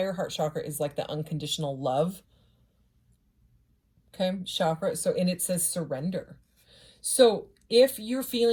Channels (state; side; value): identical; both; correlation 1.00